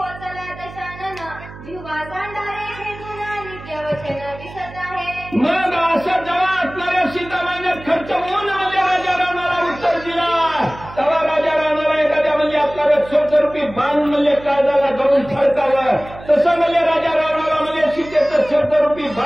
दशानन जिव्हा सांडारे हे गुन्हा नित्य वचन दिसत आहे. मग असं जेव्हा असणाऱ्या सीतामाईने खर्च होऊन म्हणजे राजा रावणाला उत्तर दिला तेव्हा राजा रावणाला एखाद्या म्हणजे आपल्याला शब्दरूपी बाण म्हणजे काळजाला धरून फडकावं तसं म्हणजे राजा रावणाला म्हणजे सीतेचं शब्दरूपी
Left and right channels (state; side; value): noise; right; hum, 16 dB below the sound